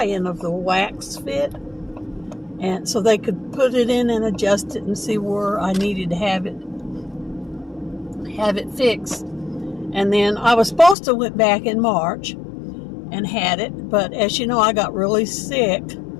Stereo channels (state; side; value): drops out; right; at 11.0 s